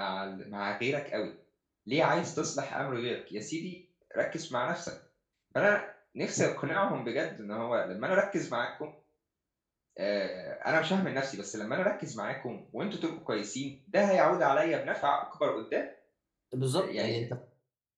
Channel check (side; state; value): both; identical; correlation 1.00